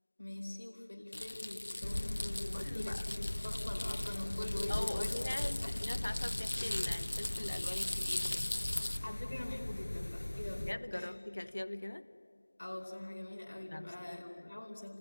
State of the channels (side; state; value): both; inverted; correlation -1.00